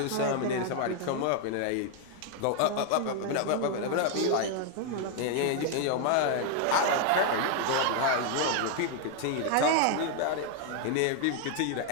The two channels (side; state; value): both; different; correlation 0.00